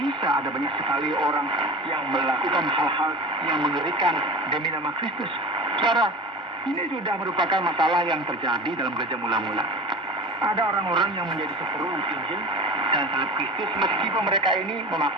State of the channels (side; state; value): both; normal; correlation 0.33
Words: ada banyak sekali orang yang melakukan hal-hal yang mengerikan demi nama Kristus. Saudara, ini sudah merupakan masalah yang terjadi dalam gereja mula-mula. Ada orang-orang yang menjadi seteru Injil dan salib Kristus meskipun mereka ini